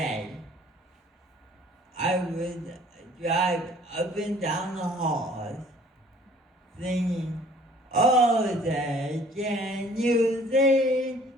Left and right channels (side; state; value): both; normal; correlation 0.55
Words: I would drive up and down the halls singing, oh, say, can you sing?